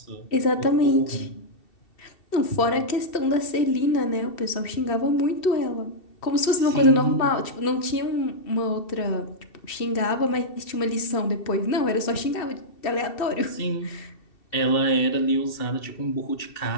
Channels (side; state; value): right; late; 2.7 ms